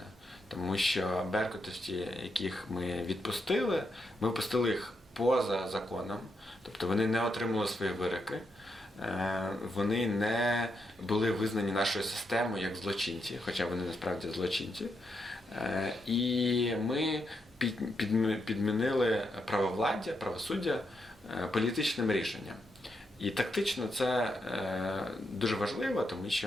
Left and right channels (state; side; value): normal; both; correlation 0.81